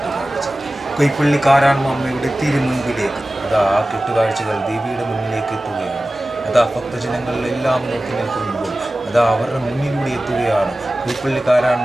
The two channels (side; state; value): both; normal; correlation 0.96